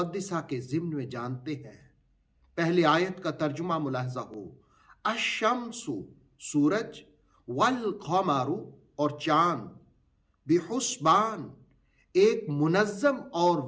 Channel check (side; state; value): both; identical; correlation 1.00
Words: کے ضمن میں جانتے ہیں۔ پہلے آیت کا ترجمہ ملاحظہ ہو۔ الشمس سورج، والقمر اور چاند، بحسبان ایک منظم اور